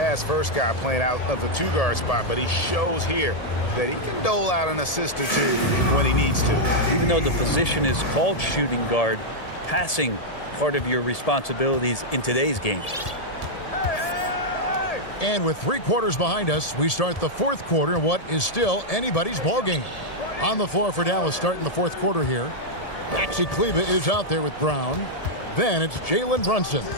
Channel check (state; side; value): late; right; 1.7 ms